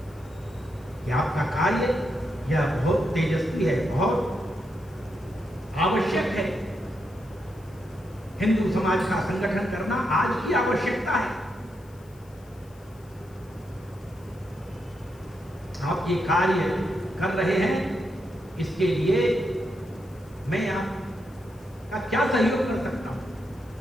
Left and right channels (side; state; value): left; noise; hiss, 28 dB below the sound